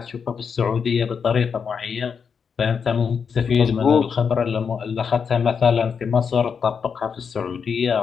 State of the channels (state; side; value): quieter; right; 6.4 dB